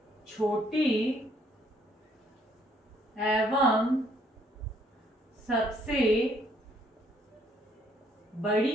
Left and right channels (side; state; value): both; normal; correlation 0.67